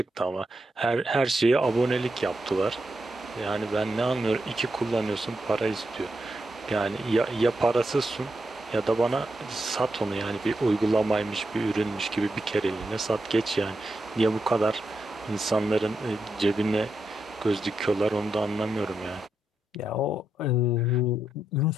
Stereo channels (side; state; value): both; normal; correlation 0.85